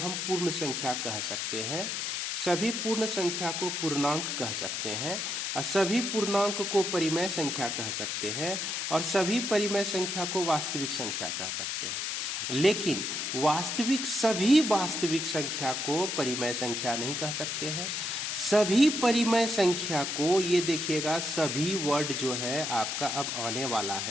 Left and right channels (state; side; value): noise; left; hiss, 2 dB below the sound